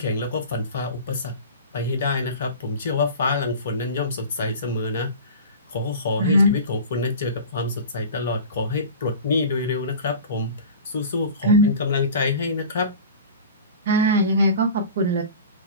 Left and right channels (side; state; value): both; inverted; correlation -0.37